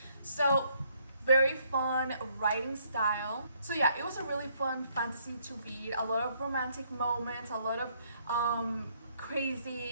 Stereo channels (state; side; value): inverted; both; correlation -0.69